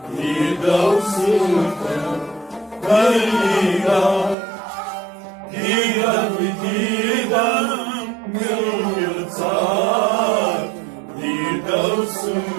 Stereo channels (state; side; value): drops out; left; at 4.4 s